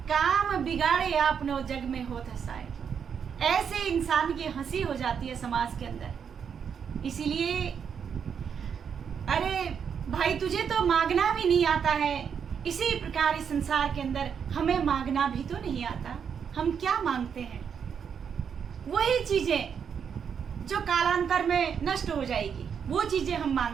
काम बिगाड़े आपनो जग में होत हंसाए। ऐसे इंसान की हंसी हो जाती है समाज के अंदर। इसीलिए, अरे भाई तुझे तो मांगना भी नहीं आता है, इसी प्रकार इस संसार के अंदर हमें मांगना भी तो नहीं आता। हम क्या मांगते हैं? वही चीजें जो कालांतर में नष्ट हो जाएगी, वो चीजें हम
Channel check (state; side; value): quieter; left; 7.2 dB